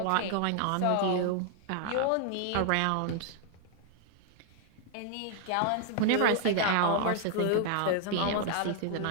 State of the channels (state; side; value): different; both; correlation 0.00